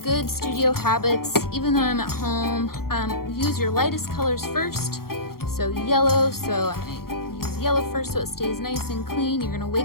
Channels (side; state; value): right; late; 0.93 ms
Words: studio habits, even though I'm at home. Use your lightest colors first. So yellow, so I'm gonna use yellow first so it stays nice and clean. You're gonna